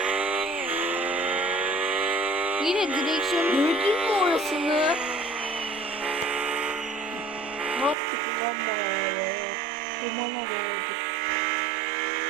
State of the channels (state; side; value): drops out; left; at 8.0 s